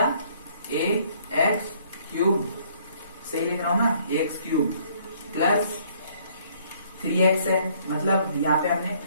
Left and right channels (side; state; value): both; inverted; correlation -0.62